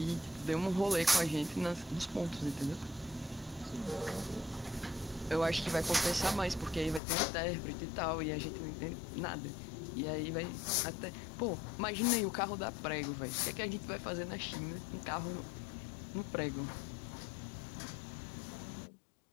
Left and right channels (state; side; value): drops out; right; at 7.0 s